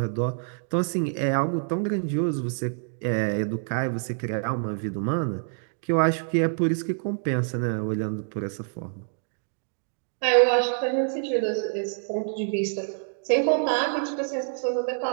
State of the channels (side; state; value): left; silent; digital silence